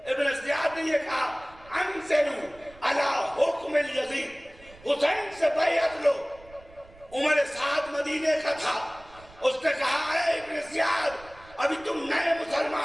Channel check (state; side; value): noise; right; rumble, 24 dB below the sound